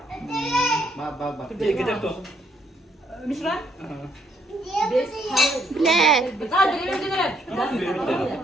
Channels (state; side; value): normal; both; correlation 0.71